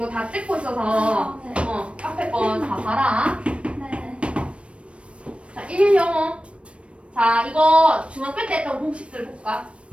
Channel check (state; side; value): late; left; 0.060 ms